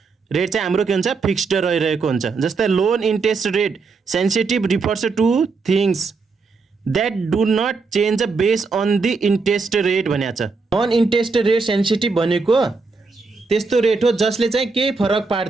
रेट चाहिँ हाम्रो के हुन्छ, फिक्स्ड रहिरहेको हुन्छ। जस्तै loan interest rate sensitive refers to things that do not change base on the interest rate भनेको छ। नन इन्ट्रेस्ट रेट सेन्सिटिभ भनेको त्यस्तो रेट हो जसले चाहिँ केही फरक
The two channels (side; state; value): left; quieter; 4.4 dB